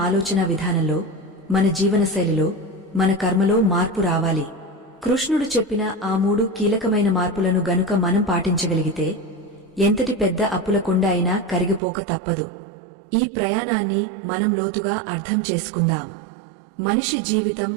ఆలోచన విధానంలో, మన జీవనశైలిలో, మన కర్మలో మార్పు రావాలి. కృష్ణుడు చెప్పిన ఆ 3 కీలకమైన మార్పులను గనుక మనం పాటించగలిగితే ఎంతటి పెద్ద అప్పుల కొండ అయినా కరిగిపోక తప్పదు. ఈ ప్రయాణాన్ని మనం లోతుగా అర్థం చేసుకుందాం. మనిషి జీవితం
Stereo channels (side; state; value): left; drops out; at 11.8 s